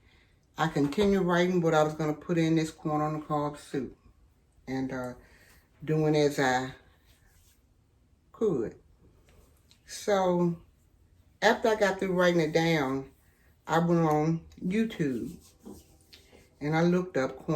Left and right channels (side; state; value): both; identical; correlation 1.00